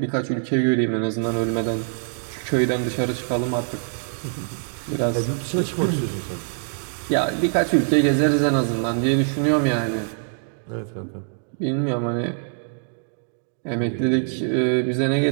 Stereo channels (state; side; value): silent; left; digital silence